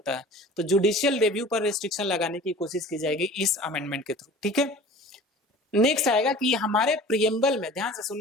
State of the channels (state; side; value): normal; both; correlation 0.43